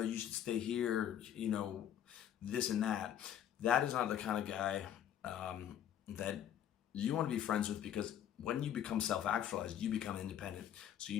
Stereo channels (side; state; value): right; quieter; 10.1 dB